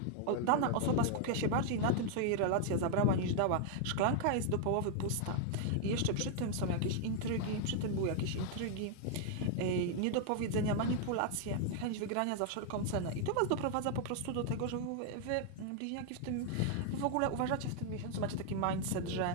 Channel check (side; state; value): both; different; correlation 0.00